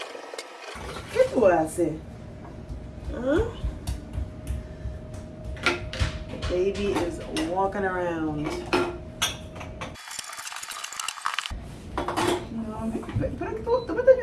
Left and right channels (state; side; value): identical; both; correlation 1.00